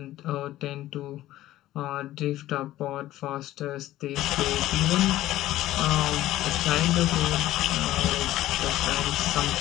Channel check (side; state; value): right; quieter; 14.9 dB